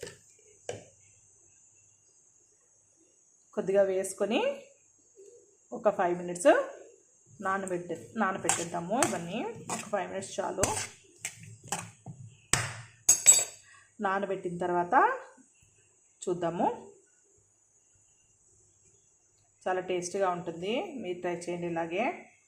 కొద్దిగా వేసుకొని ఒక 5 minutes నానబెట్టేద్దాము. ఇవన్నీ ఒక 5 minutes చాలు. నానబెట్టిన తర్వాత చూద్దాము. చాలా టేస్టీగా ఉంటుంది, మీరు ట్రై చేయండి ఇలాగే.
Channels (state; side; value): identical; both; correlation 1.00